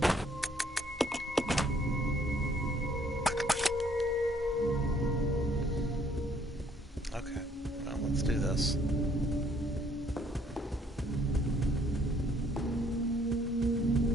Okay, well, let's do this.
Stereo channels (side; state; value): both; normal; correlation 0.63